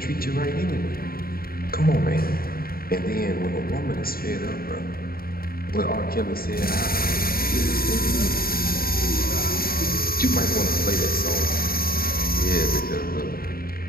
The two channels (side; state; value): right; late; 0.43 ms